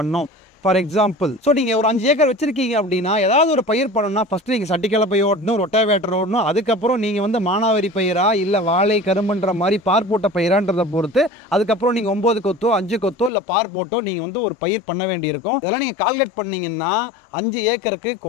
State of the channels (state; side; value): drops out; right; at 13.3 s